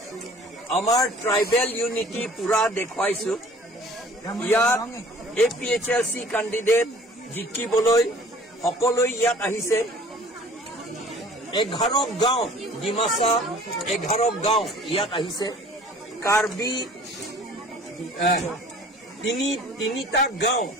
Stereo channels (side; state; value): both; normal; correlation 0.49